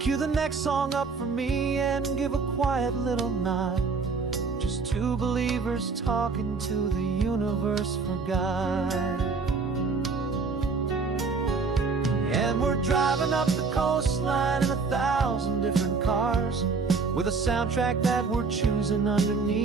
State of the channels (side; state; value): left; quieter; 4.6 dB